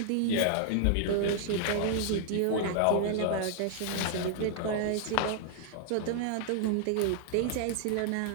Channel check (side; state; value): both; different; correlation -0.01